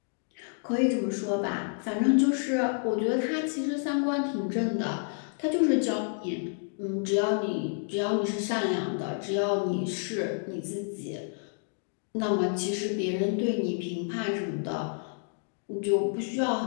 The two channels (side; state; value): right; silent; 58 dB below the other